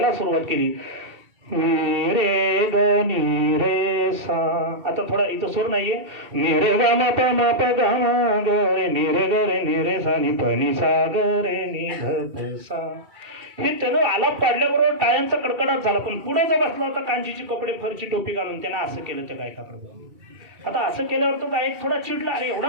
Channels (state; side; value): late; left; 2.2 ms